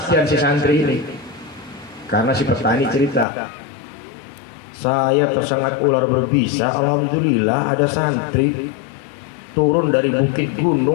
si santri ini. Karena si petani cerita, saya tersengat ular berbisa, alhamdulillah ada santri turun dari bukit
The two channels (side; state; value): right; drops out; at 3.2 s